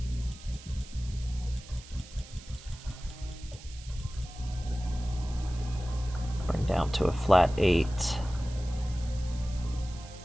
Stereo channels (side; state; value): right; noise; hiss, 18 dB below the sound